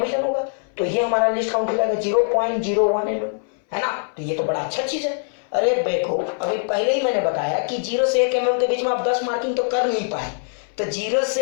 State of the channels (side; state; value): right; silent; 64 dB below the other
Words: होगा, तो ये हमारा लिस्ट काउंट हो जाएगा 0.01 mm है ना। तो ये तो बड़ा अच्छा चीज है। अरे देखो अभी पहले ही मैंने बताया कि 0 से 1 mm के बीच में आप 10 मार्किंग तो कर नहीं पाए, तो 0